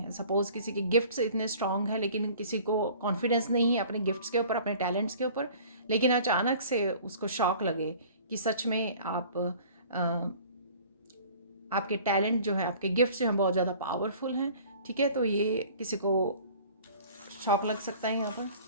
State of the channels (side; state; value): both; inverted; correlation -0.48